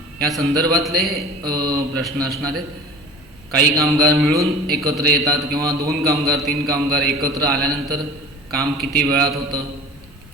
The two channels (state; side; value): normal; both; correlation 0.40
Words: या संदर्भातले प्रश्न असणार आहेत. काही कामगार मिळून एकत्र येतात किंवा 2 कामगार 3 कामगार एकत्र आल्यानंतर काम किती वेळात होतं,